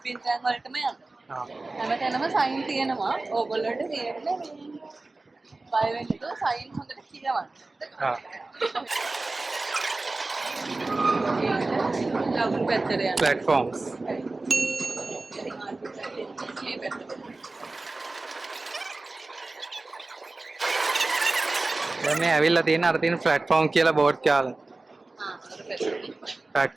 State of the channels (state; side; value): quieter; left; 3.3 dB